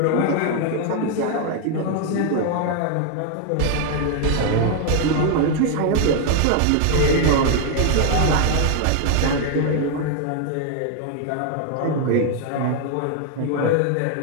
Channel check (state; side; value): different; both; correlation 0.00